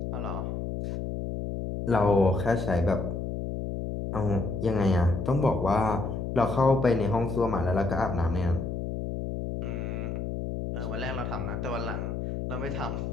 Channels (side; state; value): left; noise; hum, 4 dB below the sound